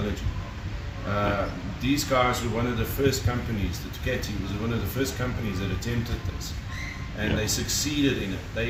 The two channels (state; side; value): identical; both; correlation 1.00